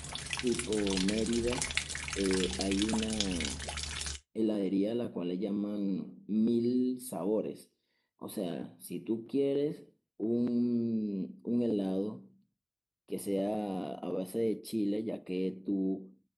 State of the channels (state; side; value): identical; both; correlation 1.00